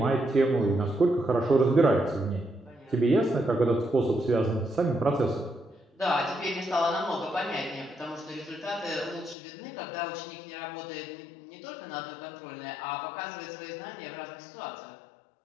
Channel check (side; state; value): right; drops out; at 9.3 s